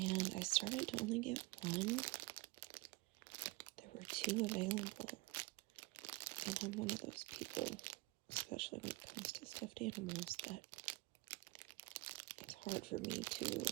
I started to only get one. There were two available, and I'm one of those people, especially when it comes to stuffed animals, that it's hard for me to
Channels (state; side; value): quieter; left; 22.7 dB